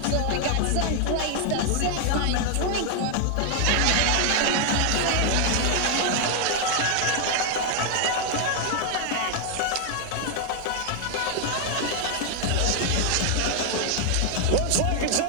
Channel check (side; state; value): both; different; correlation 0.00